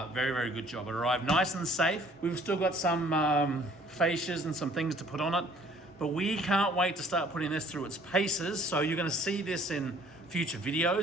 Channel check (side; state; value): both; normal; correlation 0.57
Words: very good job. It arrived nice and safe. We've still got some fascias and some things to put on it, but we can't wait to start putting this through its paces. So you're gonna see this in future